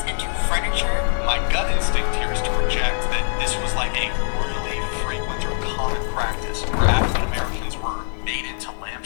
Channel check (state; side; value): silent; right; 64 dB below the other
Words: into furniture. My gut instinct here is to project that this was like a really frequent or common practice. African Americans were made into